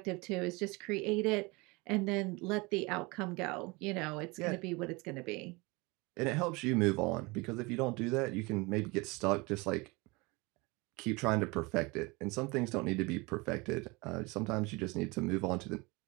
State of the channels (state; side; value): quieter; left; 25.5 dB